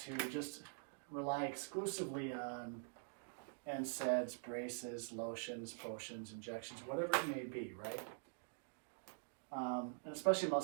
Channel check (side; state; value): left; silent; digital silence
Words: just rely exclusively on NSAIDs, braces, lotions, potions, injections, whatever it may be, right? And especially